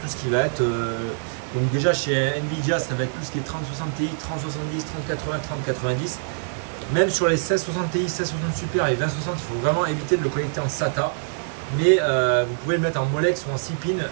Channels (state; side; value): silent; left; 62 dB below the other